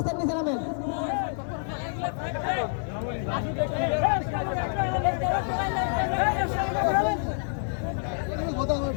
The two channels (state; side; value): silent; right; 60 dB below the other